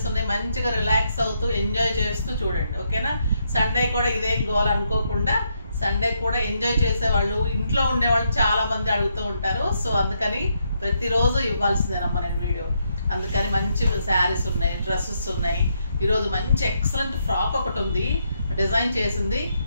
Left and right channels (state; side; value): inverted; both; correlation -0.78